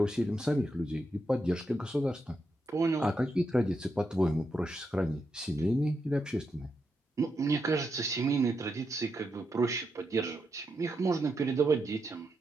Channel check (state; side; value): normal; both; correlation 0.84